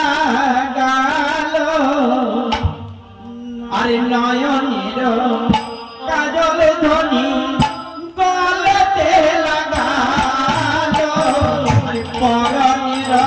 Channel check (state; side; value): identical; both; correlation 1.00